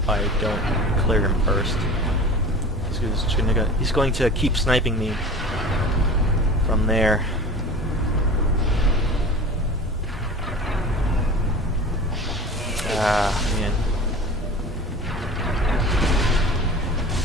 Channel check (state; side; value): normal; both; correlation 0.37